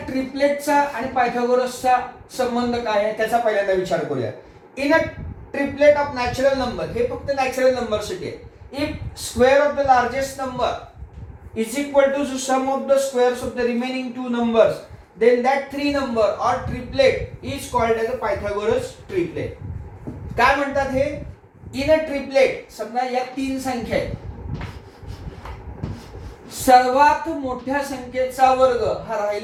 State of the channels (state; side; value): identical; both; correlation 1.00